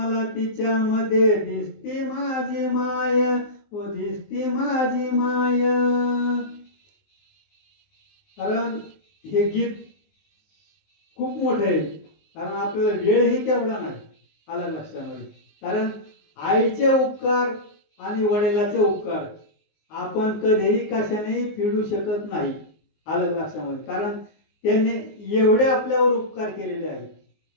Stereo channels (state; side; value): late; right; 19 ms